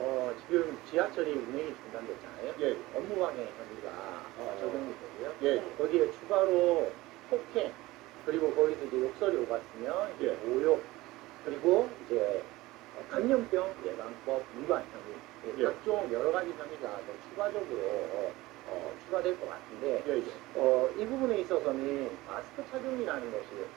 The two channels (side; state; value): left; quieter; 19.2 dB